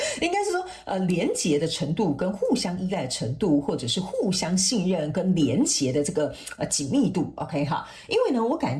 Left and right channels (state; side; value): identical; both; correlation 1.00